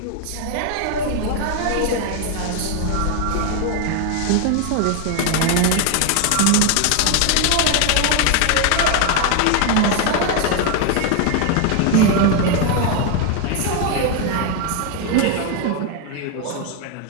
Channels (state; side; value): different; both; correlation 0.01